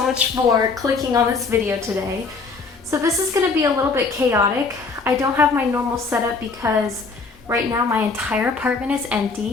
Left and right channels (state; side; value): quieter; right; 4.4 dB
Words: for clicking on this video today. So this is going to be a little bit chaotic. I don't have my normal setup because right now my entire apartment is